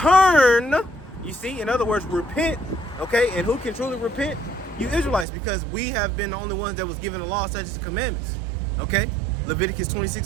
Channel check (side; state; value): left; drops out; at 5.2 s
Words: you see, in other words, repent, okay? And who can truly repent? You Israelites, because we have been the only ones that was given the law, such as the commandments, okay? Leviticus